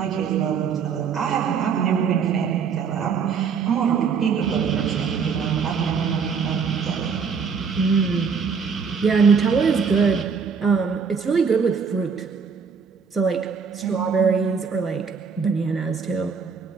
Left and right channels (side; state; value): left; quieter; 5.9 dB